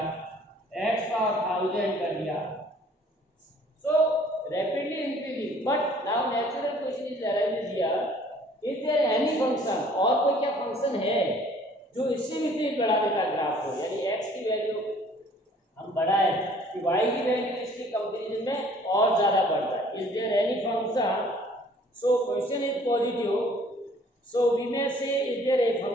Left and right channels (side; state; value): both; normal; correlation 0.56